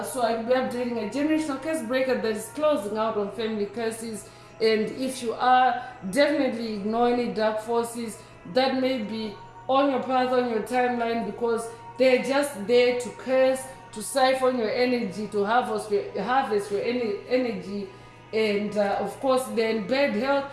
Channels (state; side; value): identical; both; correlation 1.00